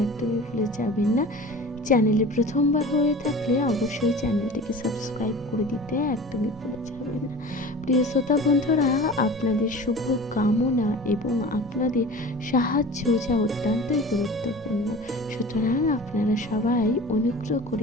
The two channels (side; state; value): both; normal; correlation 0.38